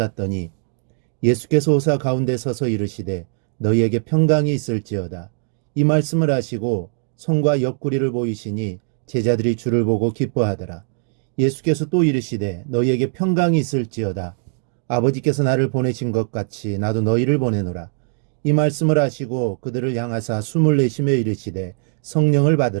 예수께서 오사 가운데 서서 이르시되 너희에게 평강이 있을지어다. 이 말씀을 하시고 손과 옆구리를 보이시니 제자들이 주를 보고 기뻐하더라. 예수께서 또 이르시되 너희에게 평강이 있을지어다. 아버지께서 나를 보내신 것 같이 나도 너희를 보내노라. 이 말씀을 하시고 그들을 향하사 숨을 내쉬며 이르시되 성령을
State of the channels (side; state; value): left; silent; 65 dB below the other